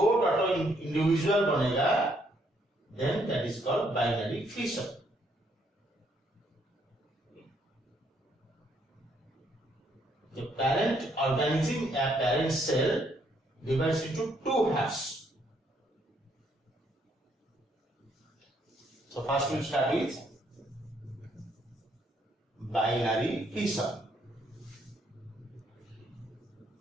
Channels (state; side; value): normal; both; correlation 0.70